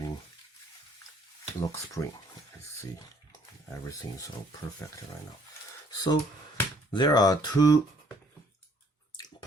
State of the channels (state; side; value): normal; both; correlation 0.62